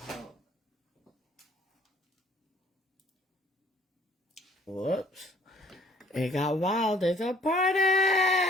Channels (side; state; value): both; normal; correlation 0.58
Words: Whoops. It got wild. It's a